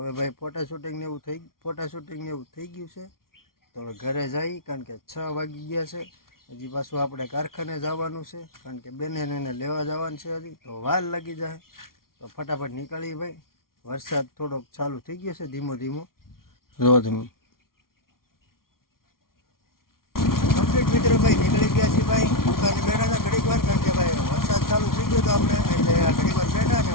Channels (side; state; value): right; late; 0.93 ms